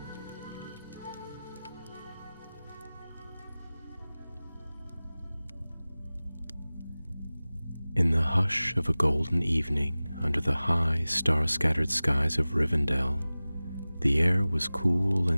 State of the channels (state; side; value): inverted; both; correlation -0.98